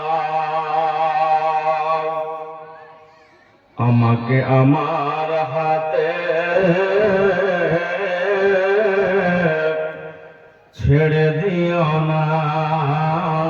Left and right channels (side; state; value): both; identical; correlation 1.00